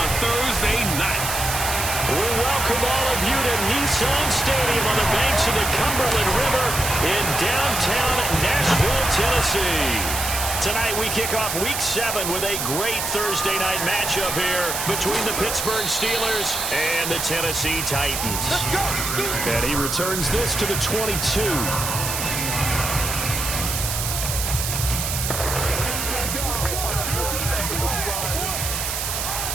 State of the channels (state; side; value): noise; right; hiss, 2 dB below the sound